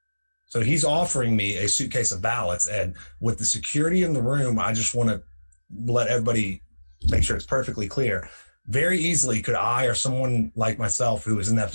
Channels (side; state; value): both; inverted; correlation -1.00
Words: So he's offering me a suitcase of ballots. And with the security in the room, I just want to let everybody make sure it's perfectly clear. Very easily could I or someone like myself who was in that